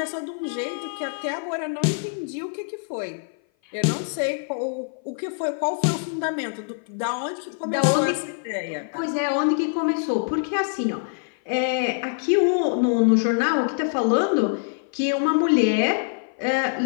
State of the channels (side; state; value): right; silent; 57 dB below the other